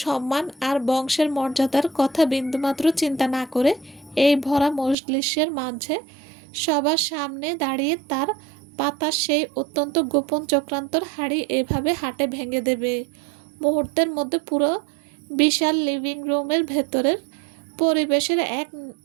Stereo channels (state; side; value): drops out; left; at 5.0 s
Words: সম্মান আর বংশের মর্যাদার কথা বিন্দুমাত্র চিন্তা না করে এই ভরা মজলিসের মাঝে সবার সামনে দাঁড়িয়ে তার পাতা সেই অত্যন্ত গোপন চক্রান্তর হাড়ি এভাবে হাটে ভেঙে দেবে। মুহূর্তের মধ্যে পুরো বিশাল লিভিং রুমের ভেতরের পরিবেশের এক